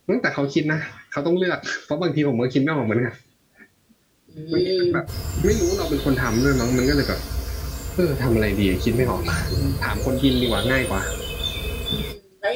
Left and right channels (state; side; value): identical; both; correlation 1.00